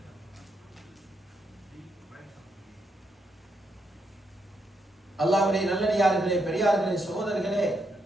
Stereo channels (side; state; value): both; normal; correlation 0.80